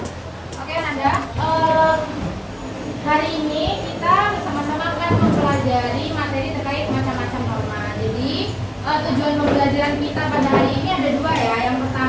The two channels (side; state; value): both; identical; correlation 1.00